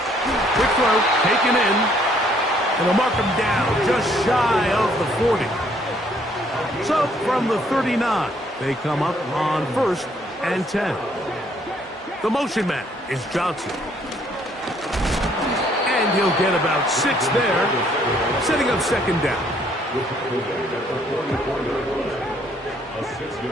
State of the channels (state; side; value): normal; both; correlation 0.66